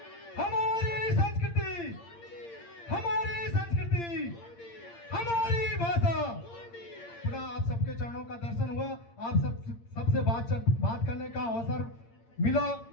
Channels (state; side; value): late; right; 8.7 ms